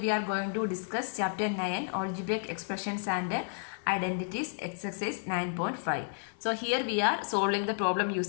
are going to discuss chapter 9 algebraic expressions and identities exercise 9.5. So here we are solving the problem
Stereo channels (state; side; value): silent; right; digital silence